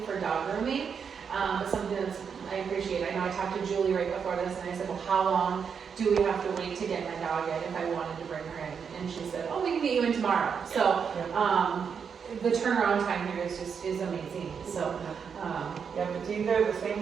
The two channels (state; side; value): quieter; left; 6.6 dB